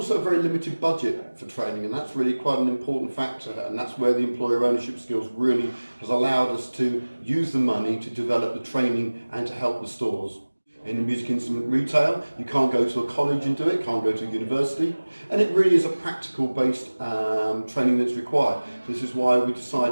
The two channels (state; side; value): inverted; both; correlation -1.00